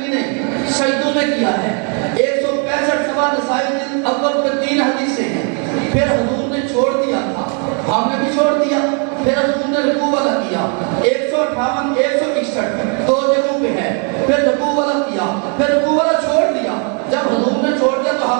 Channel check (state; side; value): quieter; left; 39.6 dB